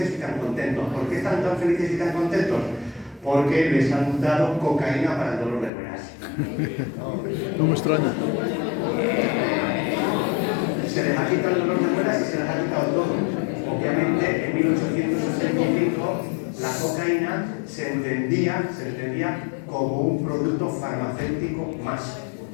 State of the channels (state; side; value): drops out; right; at 5.7 s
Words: y tan contentos. ¿Por qué están tan felices y tan contentos? Porque les han dado cocaína para el dolor de muelas. No me extraña. Se les ha quitado el dolor de muelas y se les ha quitado todo. Obviamente, en 1885, la cocaína se entendía como un producto farmacéutico más,